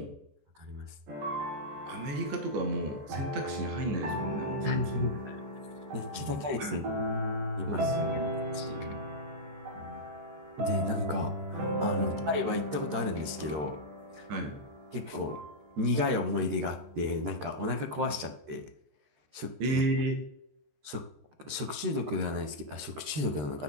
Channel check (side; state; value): left; late; 13 ms